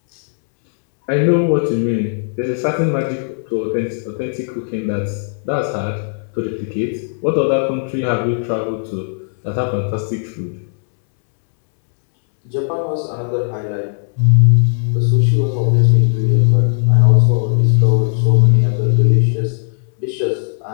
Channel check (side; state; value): right; silent; 68 dB below the other